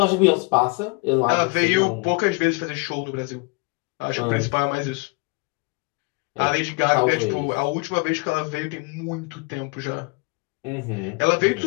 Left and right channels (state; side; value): quieter; right; 28.3 dB